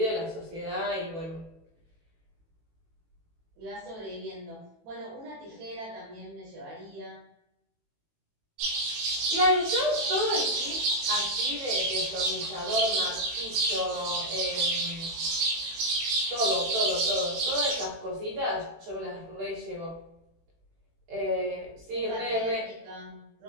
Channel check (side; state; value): left; late; 18 ms